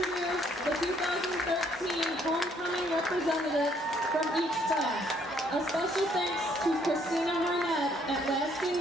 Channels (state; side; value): normal; both; correlation 0.67